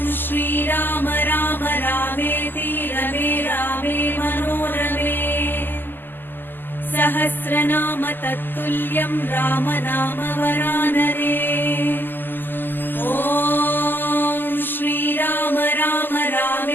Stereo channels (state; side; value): late; right; 0.092 ms